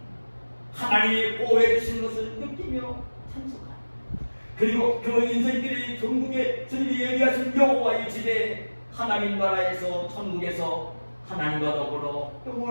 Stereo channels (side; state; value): both; inverted; correlation -1.00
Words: 하나님이 보호해 주시는 것을 느끼며 찬송하라. 그리고 그 인생길이 전국에 주님이 예비하신 여호와의 집에 하나님 나라에서 천국에서 하나님과 더불어